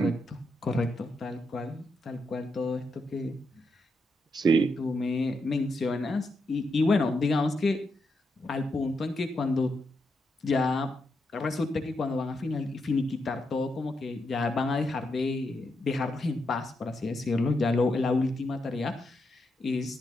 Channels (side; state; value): both; normal; correlation 0.83